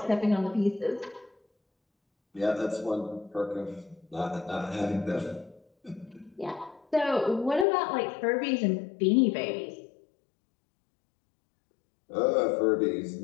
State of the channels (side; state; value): right; drops out; at 7.7 s